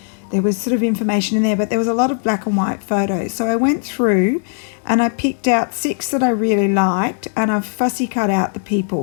there was sort of information in there, but there was a lot of black and white photos. So I went through and I picked out 6 that I really liked, and I've fussy cut out the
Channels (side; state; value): right; silent; 57 dB below the other